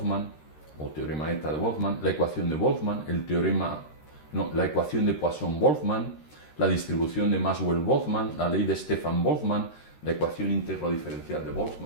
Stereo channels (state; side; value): late; right; 13 ms